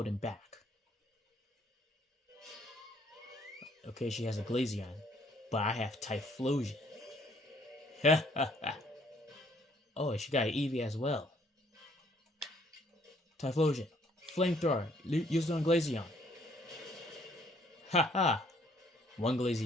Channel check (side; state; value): both; normal; correlation 0.64